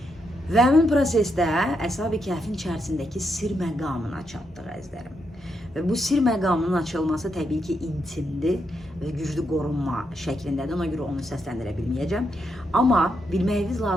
Və həmin prosesdə Əshab-ı Kəhfin içərisindəki sir məqamına çatdıq əzizlərim. Və bu sir məqamının açılması təbii ki, intimdir və güclü qorunma şəklindədir, ona görə onu səsləndirə bilməyəcəm. Amma bilməyiniz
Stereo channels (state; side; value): normal; both; correlation 0.81